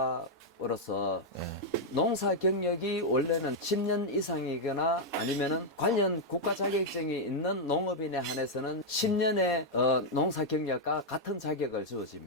농사 경력이 원래는 10년 이상이거나 아니면은 관련 국가 자격증이 있는 농업인에 한해서는 10년의 농사 경력과 같은 자격을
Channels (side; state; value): both; normal; correlation -0.02